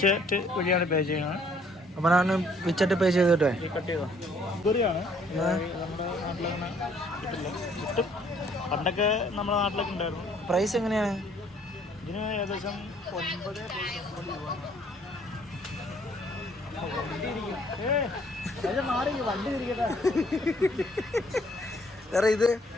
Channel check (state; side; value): normal; both; correlation 0.62